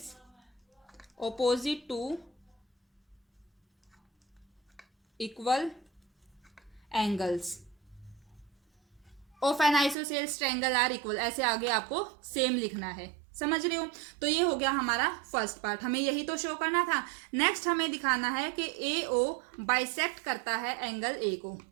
opposite to equal angles of an isosceles triangle are equal. ऐसे आगे आपको सेम लिखना है, समझ रहे हो? तो ये हो गया हमारा फर्स्ट पार्ट, हमें यही तो शो करना था। नेक्स्ट हमें दिखाना है कि ए ओ बाइसेक्ट करता है एंगल ए को,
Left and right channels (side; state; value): left; drops out; at 10.0 s